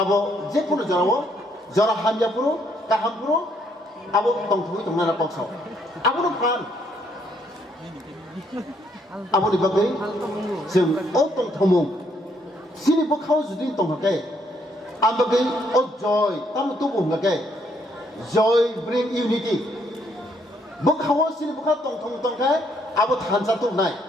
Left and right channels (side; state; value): both; normal; correlation 0.70